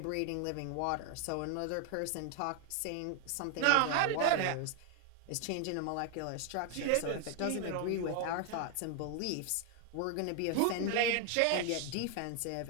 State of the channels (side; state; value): both; different; correlation 0.00